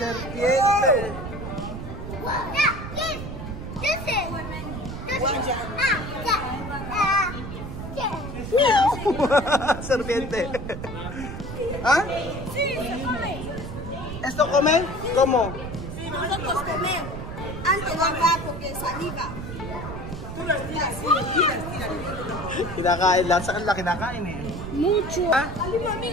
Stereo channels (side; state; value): right; noise; rumble, 8 dB below the sound